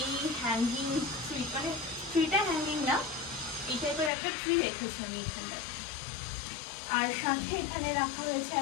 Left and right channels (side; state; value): right; drops out; at 4.1 s